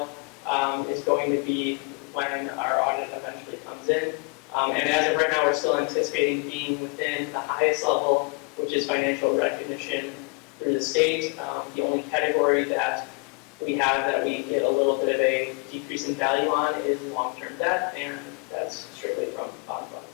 is going to be when our audit eventually comes in. And as of right now, we're still anticipating being within the highest level, which is financial recognition through the state. The only category that we have that we get a little bit of a decrease in value on is long-term debt, and that's strictly from bond funds.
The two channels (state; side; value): quieter; right; 34.1 dB